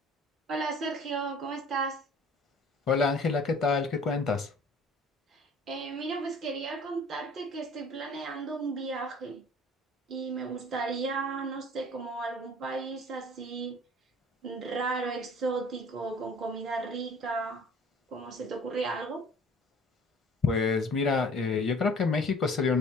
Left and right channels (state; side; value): normal; both; correlation 0.49